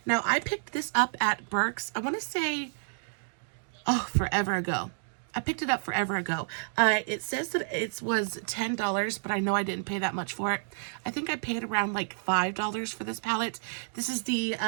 Now, I picked this up at Burke's, I want to say, forever ago. I picked it up forever ago. It says that it was $10, but I know I didn't pay that much for it. I think I paid around like $5 for this palette. This is the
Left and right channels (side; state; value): left; silent; digital silence